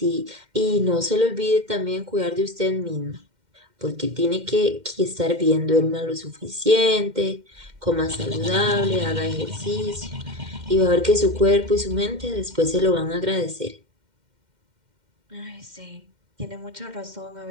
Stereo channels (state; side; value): late; left; 2.1 ms